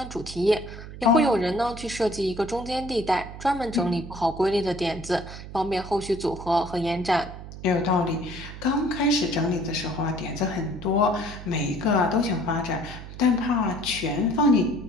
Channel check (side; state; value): right; noise; hum, 12 dB below the sound